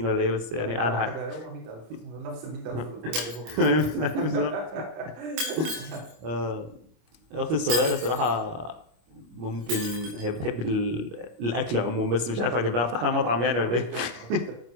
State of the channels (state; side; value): late; left; 26 ms